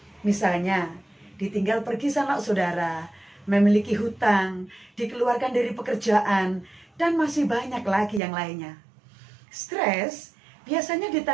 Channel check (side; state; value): left; drops out; at 8.2 s